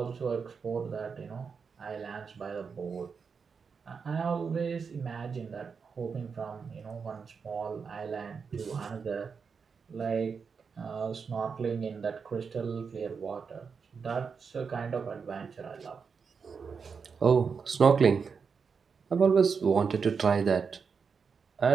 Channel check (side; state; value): left; quieter; 5.7 dB